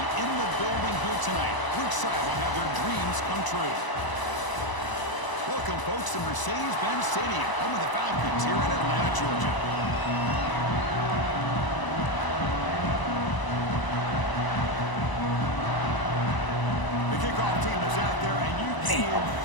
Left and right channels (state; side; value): late; right; 1.0 ms